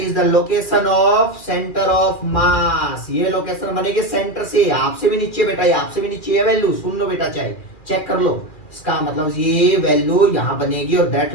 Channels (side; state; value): right; late; 2.4 ms